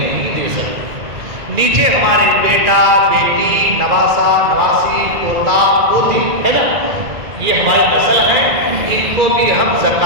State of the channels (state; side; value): late; left; 2.0 ms